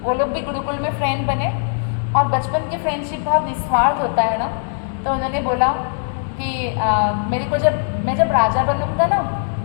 वो लोग भी गुरुकुल में फ्रेंड बने, और बचपन की फ्रेंडशिप बहुत निस्वार्थ होता है ना। तो उन्होंने बोला कि मेरे को मैं जब राजा बनूंगा ना,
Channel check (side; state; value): right; silent; digital silence